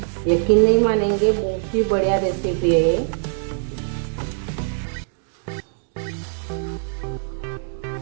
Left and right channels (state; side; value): silent; left; digital silence